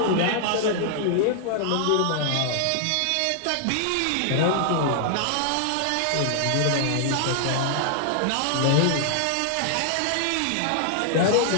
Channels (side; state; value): both; different; correlation 0.00